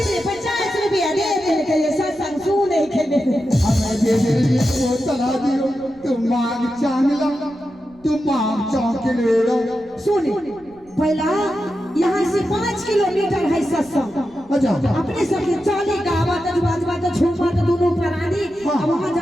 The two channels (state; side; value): noise; right; rumble, 28 dB below the sound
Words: 50 रुपया दे दे के ये सत्संग सुने के हमें दे दे वो चला दियो तुम मांग चांगला तुम मांग चांग के ले लो सुन पहला यहाँ से 5 किलोमीटर है सत्संग अच्छा अपने सब चाली गावत बाजवा तो झूमत दोनों प्राणी अब वहां